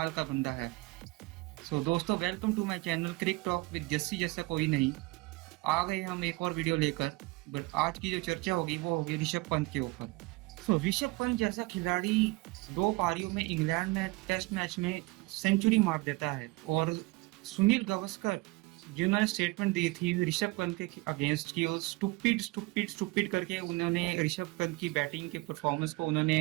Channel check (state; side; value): quieter; left; 23.2 dB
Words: का बंदा है। सो दोस्तों, welcome to my channel Cric Talk with Jassi जैसा कोई नहीं। आ गए हम एक और वीडियो लेकर। बट आज की जो चर्चा होगी वो होगी ऋषभ पंत के ऊपर। सो ऋषभ पंत जैसा खिलाड़ी दो पारियों में इंग्लैंड में टेस्ट मैच में सेंचुरी मार देता है। और सुनील गावस्कर जिन्होंने स्टेटमेंट दी थी ऋषभ पंत के अगेंस्ट की, और स्टूपिड स्टूपिड स्टूपिड करके उन्होंने ऋषभ पंत की बैटिंग के परफॉर्मेंस को